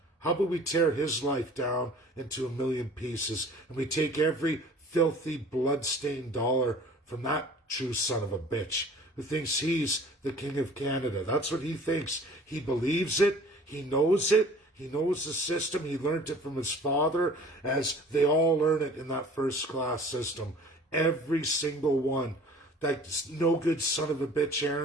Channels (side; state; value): both; normal; correlation 0.48